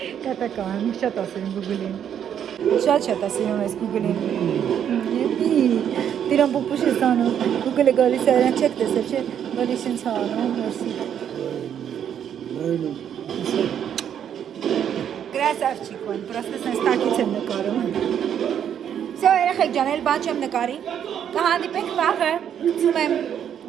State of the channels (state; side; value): quieter; left; 9.1 dB